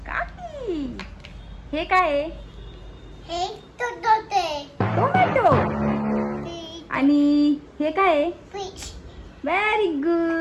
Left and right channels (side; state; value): both; identical; correlation 1.00